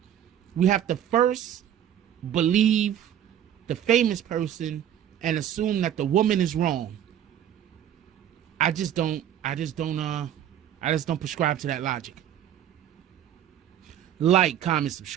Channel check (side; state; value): left; quieter; 10.4 dB